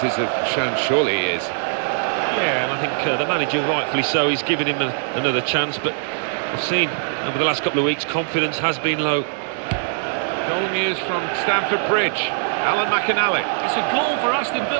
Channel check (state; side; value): silent; left; digital silence